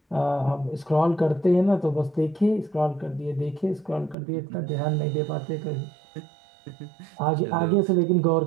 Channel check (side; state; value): left; drops out; at 4.2 s